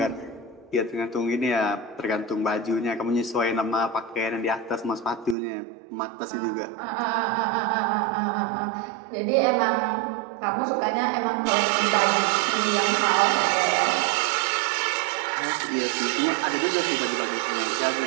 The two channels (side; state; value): left; drops out; at 5.4 s